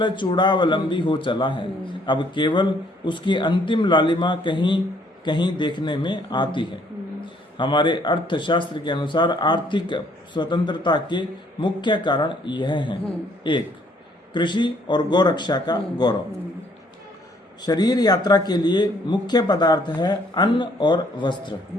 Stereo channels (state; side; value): normal; both; correlation 0.64